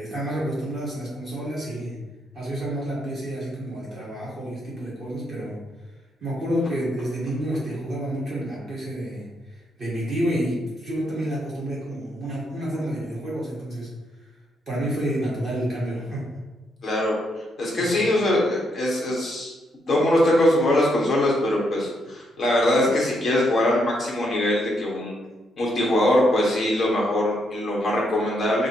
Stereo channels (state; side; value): normal; both; correlation 0.77